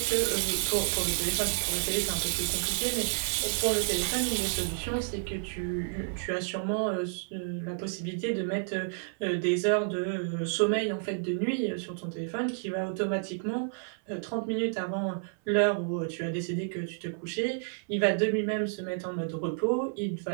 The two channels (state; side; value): silent; left; 58 dB below the other